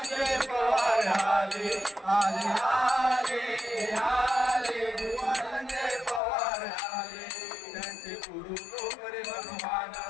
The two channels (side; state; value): right; drops out; at 6.2 s